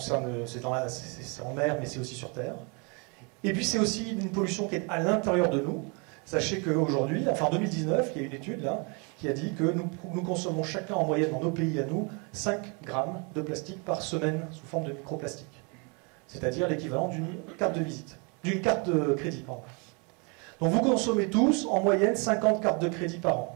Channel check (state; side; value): quieter; left; 33.1 dB